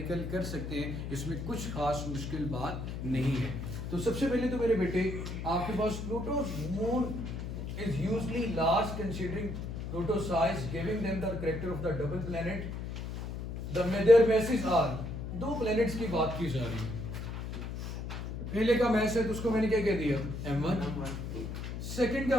कर सकते हैं, इसमें कुछ खास मुश्किल बात नहीं है। तो सबसे पहले तो मेरे बेटे आपके पास प्लूटो's moon is usually large considering Pluto's size, giving them the character of the double planet. Their masses are, दो प्लैनेट्स की बात की जा रही है। पहले का मैस है तो उसको मैंने क्या कह दिया m1, सेकंड का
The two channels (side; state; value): left; noise; hum, 6 dB below the sound